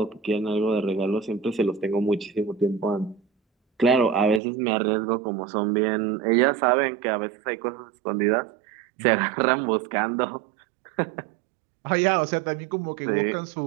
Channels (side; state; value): left; drops out; at 4.4 s